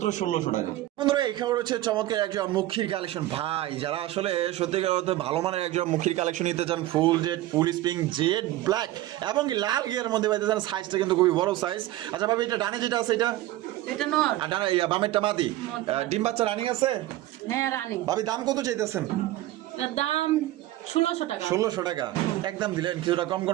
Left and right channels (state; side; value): quieter; left; 15.6 dB